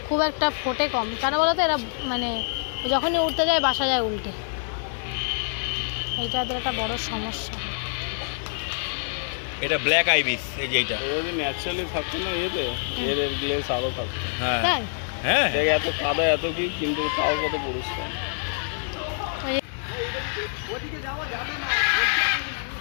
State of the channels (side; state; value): right; silent; 61 dB below the other